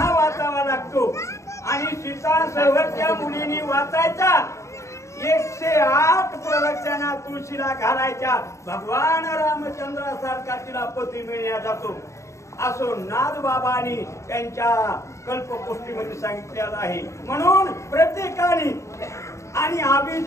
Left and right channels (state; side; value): late; right; 0.14 ms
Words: वाचावा लागतो आणि सीता संवर त्या मुलीनी वाचायचा। 108 प्रवचना तुळशीला घालायच्या, भगवान रामचंद्रासारखा तिला पती मिळण्यात जातो असो नाथबाबांनी त्यांच्या कल्पकोष्ठीमध्ये सांगितलेलं आहे। म्हणून प्रत्येकाने आणि